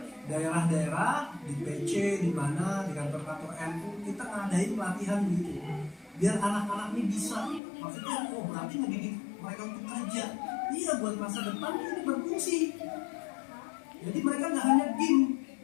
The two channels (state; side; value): drops out; right; at 7.6 s